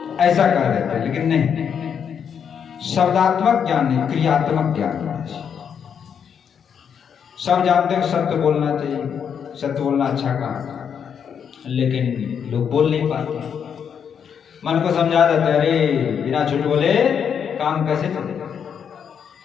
ऐसा कर देते हैं। लेकिन नहीं, शब्दात्मक ज्ञान नहीं, क्रियात्मक ज्ञान। सब जानते हैं सत्य बोलना चाहिए, सत्य बोलना अच्छा काम, लेकिन लोग बोल नहीं पाते। मन को समझा देते, अरे बिना झूठ बोले काम कैसे चलेगा।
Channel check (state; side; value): quieter; right; 7.6 dB